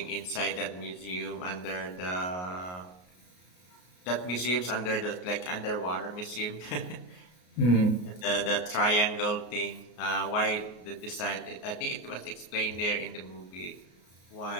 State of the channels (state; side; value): late; right; 33 ms